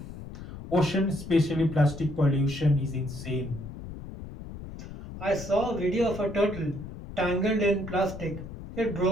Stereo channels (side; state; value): left; noise; rumble, 12 dB below the sound